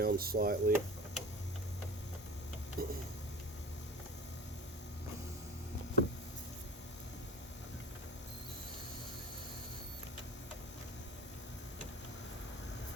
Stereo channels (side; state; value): both; normal; correlation 0.37